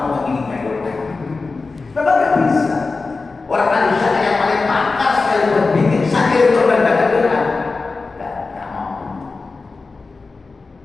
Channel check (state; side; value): quieter; right; 4.0 dB